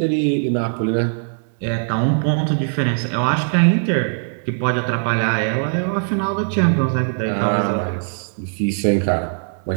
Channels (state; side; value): silent; left; digital silence